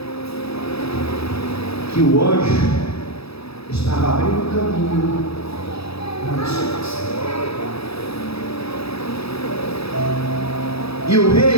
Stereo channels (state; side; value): late; right; 0.77 ms